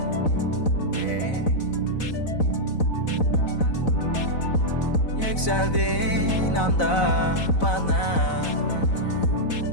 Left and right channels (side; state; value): right; late; 4.0 ms